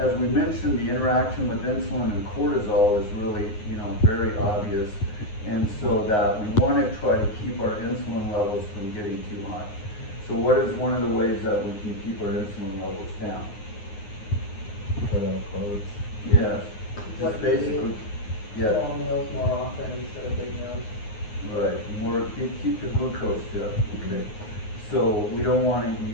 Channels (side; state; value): right; late; 9.5 ms